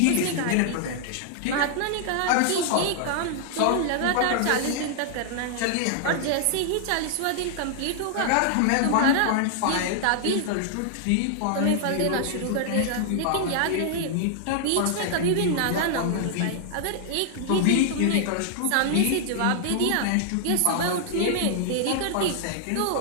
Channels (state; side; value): different; both; correlation -0.01